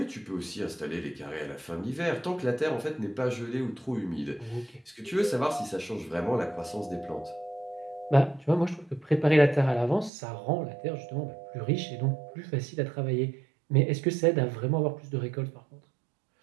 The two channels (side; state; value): left; drops out; at 10.1 s